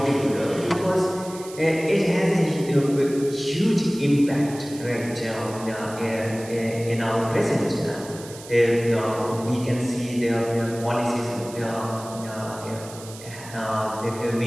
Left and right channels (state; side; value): noise; right; hiss, 16 dB below the sound